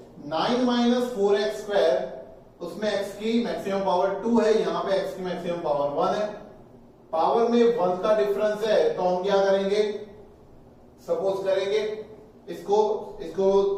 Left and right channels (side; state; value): both; identical; correlation 1.00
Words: 9 माइनस 4x स्क्वायर, उसमें x की मैक्सिमम पावर 2 है, यहां पे x की मैक्सिमम पावर 1 है, पावर में 1 का डिफरेंस है, तो हम क्या करेंगे, सपोज करेंगे इसको